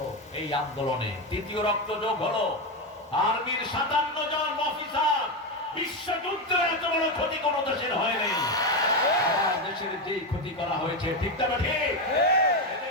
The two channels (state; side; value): normal; both; correlation 0.11